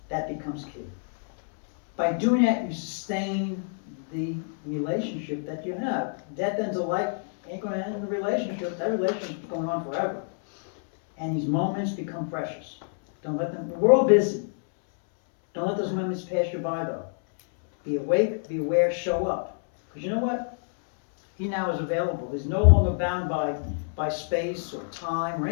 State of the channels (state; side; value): silent; right; 60 dB below the other